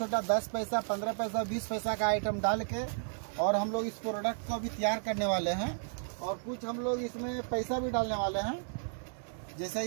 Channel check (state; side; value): silent; left; digital silence